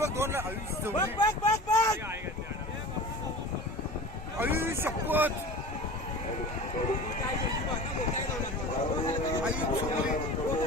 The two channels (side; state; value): both; normal; correlation 0.36